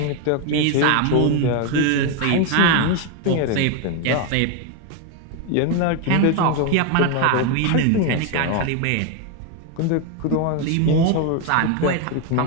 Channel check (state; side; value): different; both; correlation 0.01